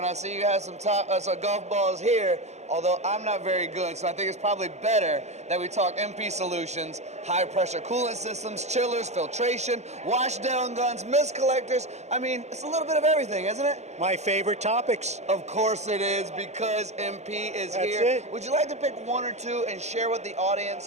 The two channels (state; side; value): late; left; 0.33 ms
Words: I see you have some golf balls here, although I'm not very good, so I think it's probably better that we talk MP solutions, high-pressure coolant systems, chillers, filtration, wash-down guns, mist collectors. I mean, it's a little bit of everything, isn't it? My favorite topics. Of course it is, because MP is That's here. it. Would you like to pick one or two and share with the